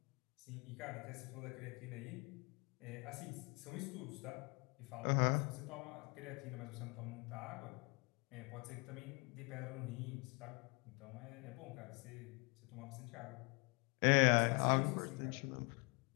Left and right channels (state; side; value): quieter; right; 31.0 dB